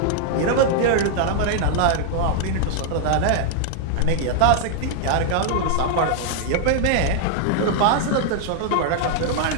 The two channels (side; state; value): both; different; correlation 0.00